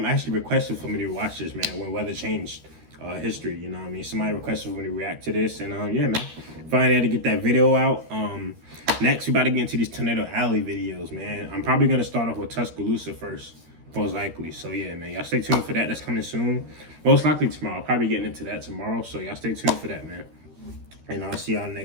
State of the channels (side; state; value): left; late; 13 ms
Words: requested for me to watch this, man, when weather changed history, you know what I mean? Somebody requested for me to react to this, and yeah, man. Finally had to get that video out. Next we about to get into these Tornado Alley videos, man. I'm probably gonna start off with Tuscaloosa first, most likely. So yeah, man, y'all stay tuned for that. That's coming soon. Most likely tomorrow. I'll probably getting into that tomorrow. So y'all stay tuned for that, man. And I'll see y'all